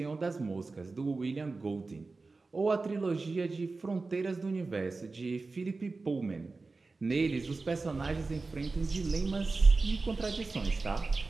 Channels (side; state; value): left; quieter; 3.8 dB